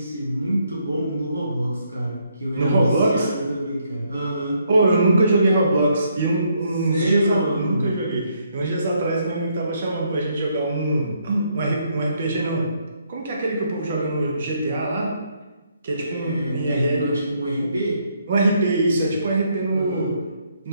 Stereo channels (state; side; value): inverted; both; correlation -0.72